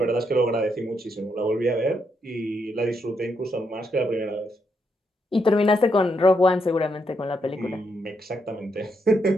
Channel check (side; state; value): both; normal; correlation 0.79